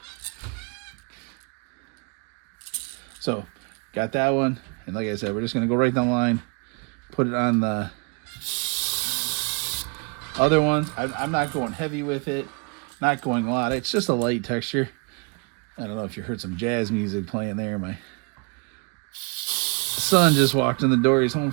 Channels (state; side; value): quieter; left; 33.0 dB